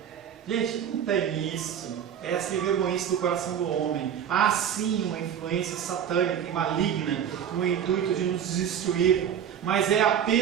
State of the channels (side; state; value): left; quieter; 8.9 dB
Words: Gente, não tem isso. É essa vergonhice do coração do homem. Há sim uma influência satânica e maligna no intuito de nos destruir, mas é